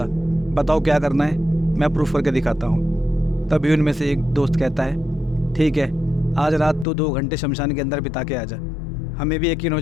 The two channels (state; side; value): drops out; right; at 6.9 s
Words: बताओ क्या करना है, मैं प्रूफ करके दिखाता हूँ। तभी उनमें से एक दोस्त कहता है, ठीक है, आज रात तो 2 घंटे शमशान के अंदर बिता के आ जा, हमें भी यकीन हो